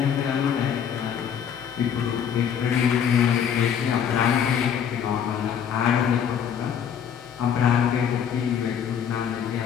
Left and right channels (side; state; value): right; quieter; 8.3 dB